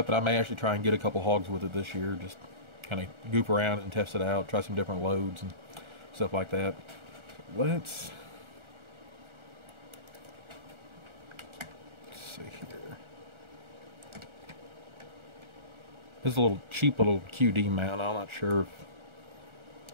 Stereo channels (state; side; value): late; left; 1.4 ms